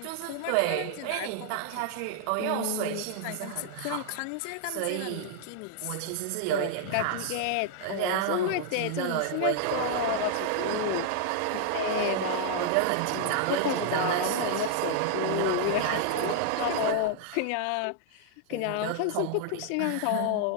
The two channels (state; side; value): different; both; correlation -0.01